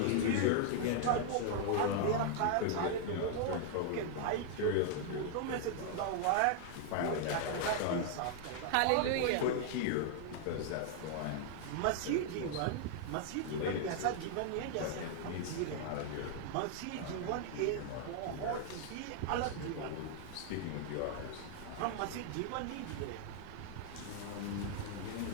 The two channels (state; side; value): different; both; correlation 0.00